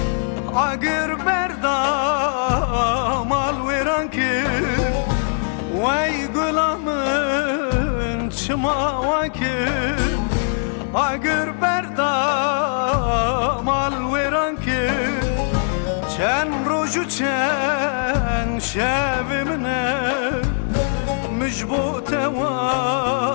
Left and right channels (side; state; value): right; silent; 61 dB below the other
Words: Agir berdam al veran kir Vay gulamın çima vakir Agir berdam al veran kir Çen roju çen şevimne مجبوط